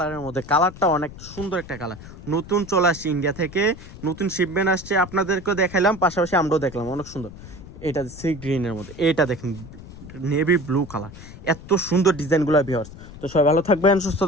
মধ্যে। কালারটা অনেক সুন্দর একটা কালার, নতুন চলে আসছে ইন্ডিয়া থেকে, নতুন শিপমেন্ট আসছে। আপনাদেরকেও দেখাইলাম, পাশাপাশি আমরাও দেখলাম, অনেক সুন্দর। এটা সি গ্রিনের মধ্যে, এটা দেখেন নেভি ব্লু কালার, এত সুন্দর ডিজাইনগুলো ভিউয়ার্স। তো সবাই ভালো থাকবেন, সুস্থ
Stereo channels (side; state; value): left; noise; rumble, 16 dB below the sound